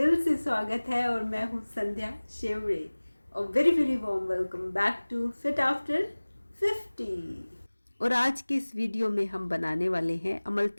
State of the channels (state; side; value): inverted; both; correlation -1.00